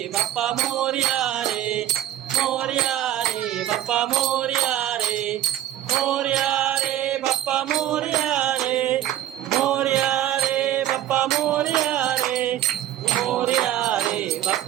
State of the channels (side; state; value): left; quieter; 12.6 dB